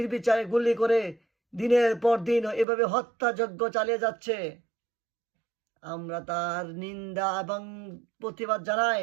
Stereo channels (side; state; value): left; drops out; at 2.7 s